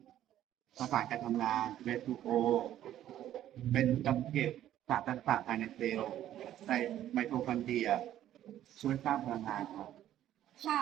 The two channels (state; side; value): quieter; left; 12.1 dB